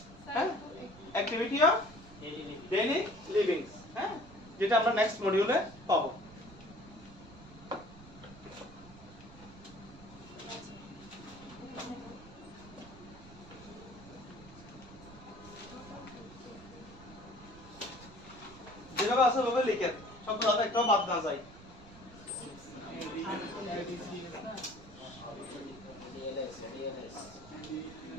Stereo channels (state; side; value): noise; right; rumble, 18 dB below the sound